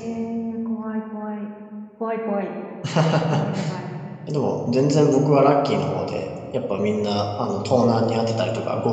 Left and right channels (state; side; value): identical; both; correlation 1.00